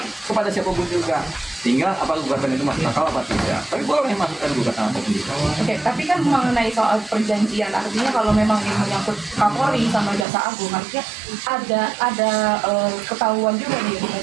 kepada siapapun juga. Tinggal apa gugatan itu masuk akal apa tidak. Tapi boleh masukkan gugatan apapun juga. Oke, tapi kan mengenai soal perjanjian, artinya kalau memang ini menyangkut Kapolri sama Jaksa Agung, artinya ada ketahuan juga nih,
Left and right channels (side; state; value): left; drops out; at 10.2 s